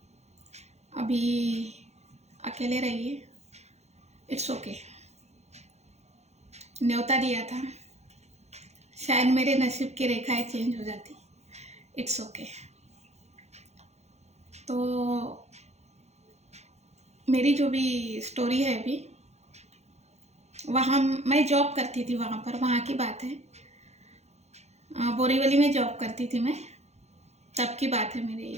अभी अकेले रहिए, इट्स ओके। न्योता दिया था, शायद मेरे नसीब की रेखाएं चेंज हो जाती, इट्स ओके। तो मेरी जो भी स्टोरी है अभी, वहाँ मैं जॉब करती थी, वहाँ की बात है। बोरीवली में जॉब करती थी मैं, तब की बात है मेरी।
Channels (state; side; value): late; left; 0.32 ms